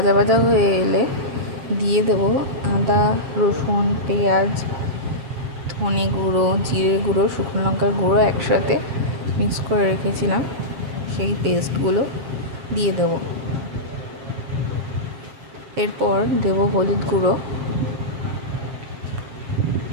ভাজা হয়ে এলে দিয়ে দেবো আদা, রসুন, পেঁয়াজ, ধনে গুঁড়ো, জিরে গুঁড়ো, শুকনো লঙ্কার গুঁড়ো একসাথে মিক্স করে রেখেছিলাম, সেই পেস্টগুলো দিয়ে দেবো। এরপর দেবো হলুদ গুঁড়ো,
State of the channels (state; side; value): late; left; 7.4 ms